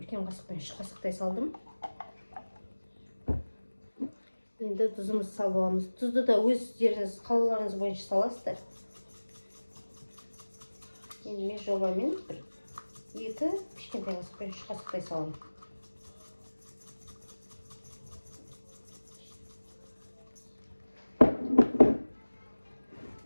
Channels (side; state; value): both; inverted; correlation -1.00